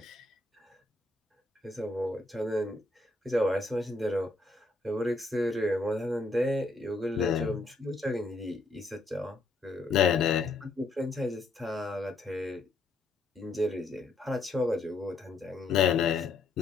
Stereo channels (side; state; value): right; quieter; 3.3 dB